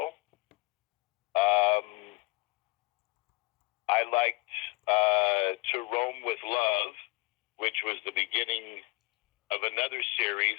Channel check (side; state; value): right; quieter; 24.9 dB